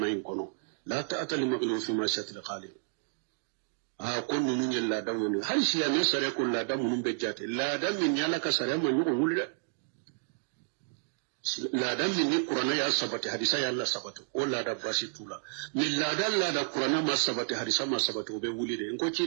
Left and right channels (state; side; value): silent; left; digital silence